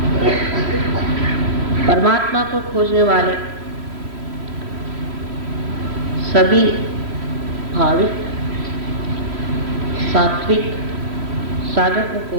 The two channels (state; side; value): late; left; 3.1 ms